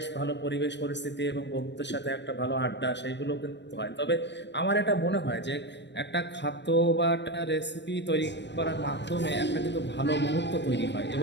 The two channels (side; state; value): right; late; 0.51 ms